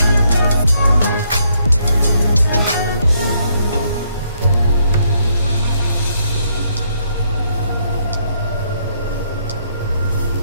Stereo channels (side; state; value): both; inverted; correlation -0.72